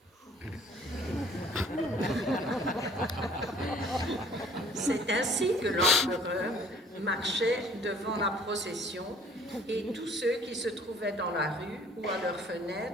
C'est ainsi que l'empereur marchait devant la procession et tous ceux qui se trouvaient dans la rue ou à leurs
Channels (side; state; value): both; normal; correlation 0.54